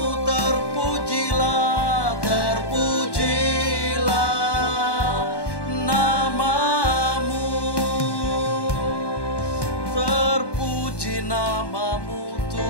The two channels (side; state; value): right; late; 1.1 ms